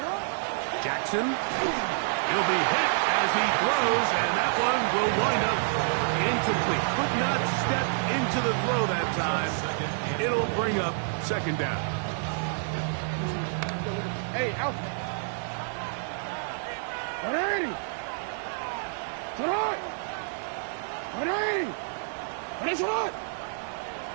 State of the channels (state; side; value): silent; left; digital silence